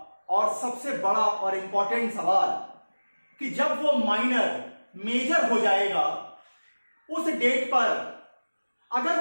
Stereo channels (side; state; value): both; inverted; correlation -1.00